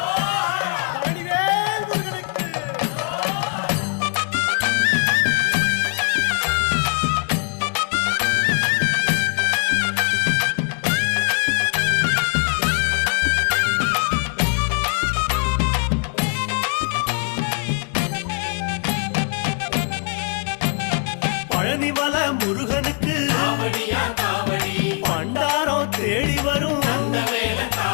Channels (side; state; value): right; quieter; 36.5 dB